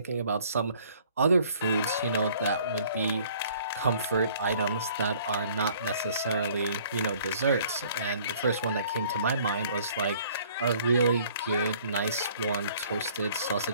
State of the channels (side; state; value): both; inverted; correlation -0.56